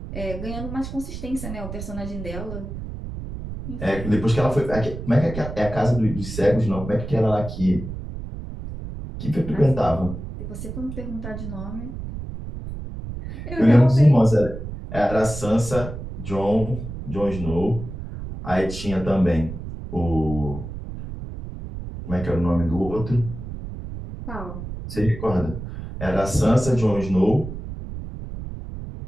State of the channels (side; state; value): right; noise; rumble, 9 dB below the sound